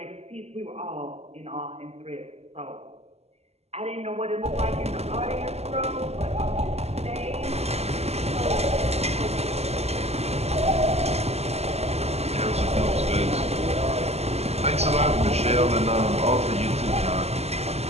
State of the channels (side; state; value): left; late; 0.30 ms